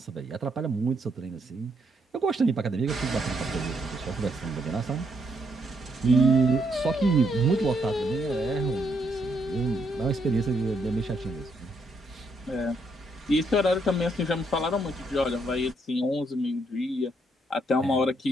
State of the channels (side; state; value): both; normal; correlation 0.75